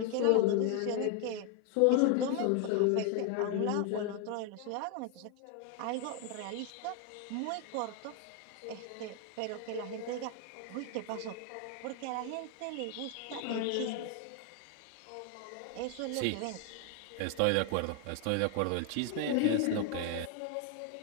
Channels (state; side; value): different; both; correlation 0.01